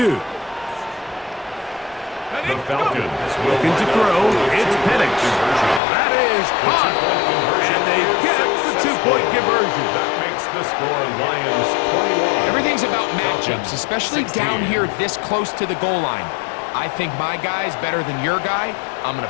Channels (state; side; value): drops out; right; at 5.8 s